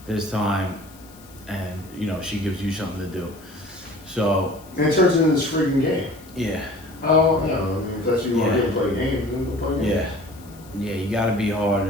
This time, and she gives you something to do. So And it turns into this freaking game. yeah, Oh, yeah. I mean, if that's what you want Yeah. to do, play games, then go play games. yeah. You got to be hard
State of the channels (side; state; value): left; noise; hiss, 24 dB below the sound